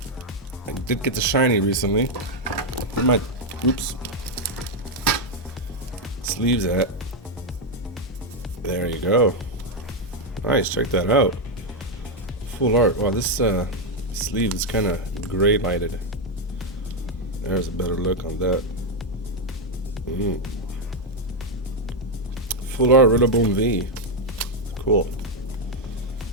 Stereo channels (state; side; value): normal; both; correlation 0.02